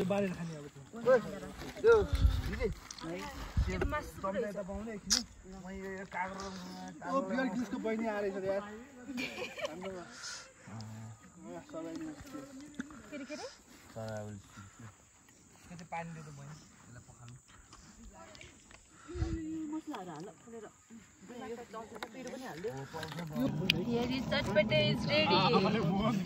बहिनी आएर यार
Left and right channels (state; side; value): identical; both; correlation 1.00